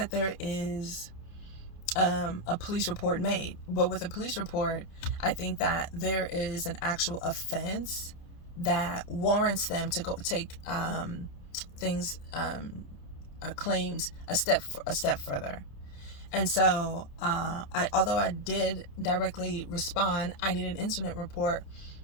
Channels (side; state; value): right; late; 29 ms